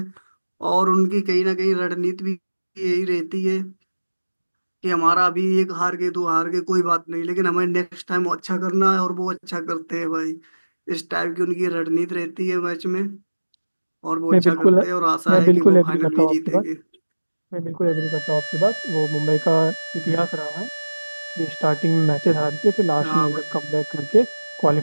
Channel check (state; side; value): inverted; both; correlation -1.00